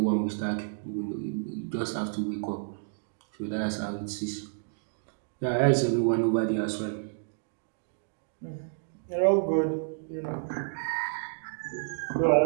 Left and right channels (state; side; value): silent; left; digital silence